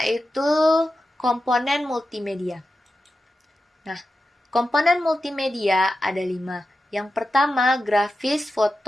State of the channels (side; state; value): both; normal; correlation 0.91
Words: komponen multimedia. Nah, komponen multimedia ada 5. Yang pertama, grafis,